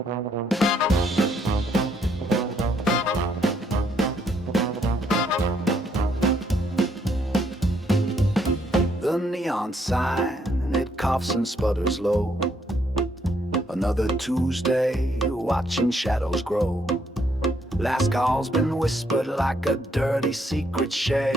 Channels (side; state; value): both; normal; correlation 0.71